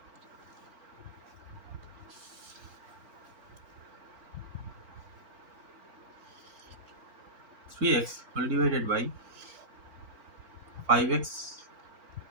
3x whole divided by 5x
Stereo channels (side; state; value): left; late; 4.4 ms